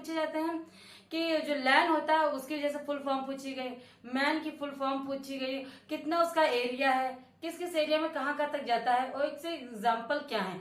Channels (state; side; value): identical; both; correlation 1.00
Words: जाते हैं कि जो लैन होता है उसकी जैसे फुल फॉर्म पूछी गई, मैन की फुल फॉर्म पूछी गई, कितना उसका एरिया है, किस किस एरिया में कहाँ कहाँ तक जाता है और इससे एग्जाम्पल क्या है,